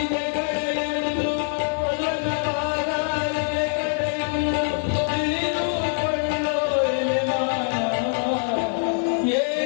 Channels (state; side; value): silent; right; digital silence